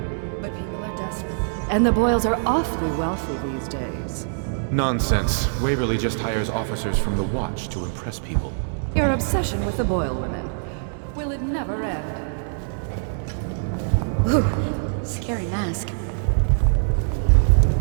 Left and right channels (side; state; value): left; silent; digital silence